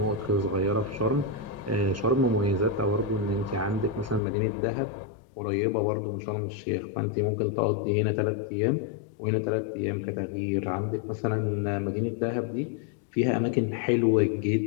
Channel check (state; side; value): drops out; right; at 4.2 s